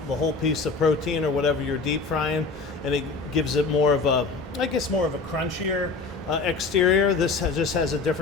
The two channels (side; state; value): right; quieter; 4.1 dB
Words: piece of protein or whatever you're deep frying, and it gives it more of a crunchier exterior. This just has a